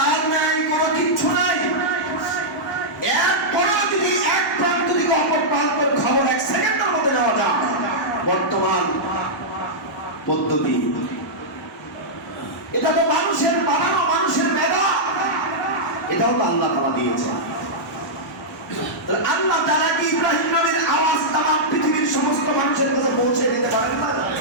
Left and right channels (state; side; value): normal; both; correlation -0.10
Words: নাই, কোনো কিচ্ছু নাই, এরপরেও যদি এক প্রান্ত থেকে অপর প্রান্তের খবর 1 সেকেন্ডের মধ্যে নেওয়া যায়, বর্তমান পদ্ধতি। এটা তো মানুষের বানানো, মানুষের মেধা, এটাও তো আল্লাহ তাআলা দিয়েছে। আল্লাহ তাআলা কি ইব্রাহিম নবীর আওয়াজ তামাম পৃথিবীর সমস্ত মানুষের কাছে পৌঁছে দিতে পারেন না?